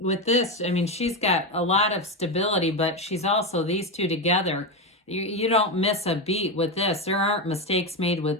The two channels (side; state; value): both; normal; correlation 0.12